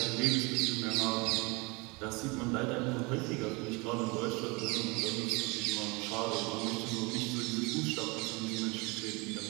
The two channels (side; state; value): left; quieter; 27.1 dB